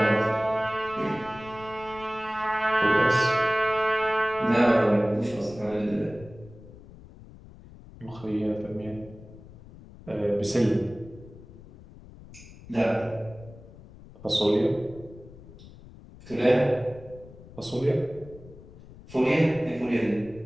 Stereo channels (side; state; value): left; noise; rumble, 19 dB below the sound